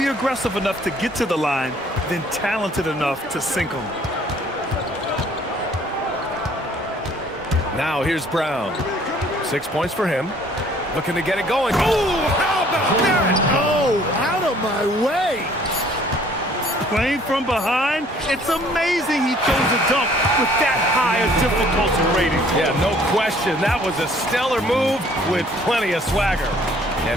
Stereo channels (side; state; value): both; normal; correlation 0.58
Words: aggressive enough to get to the line, then talented enough to sink them. Now here's Brown. 6 points for him. Looking to get it going. Oh, how about that? Oh, out of my way. playing from behind, it's amazing he chose a dunk with that high a difficulty rating. Yeah, no question. That was a stellar move with plenty of swagger.